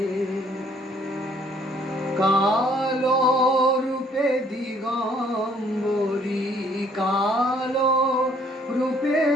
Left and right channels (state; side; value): normal; both; correlation 0.62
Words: কালো রূপে দিগম্বরী, কালো রূপে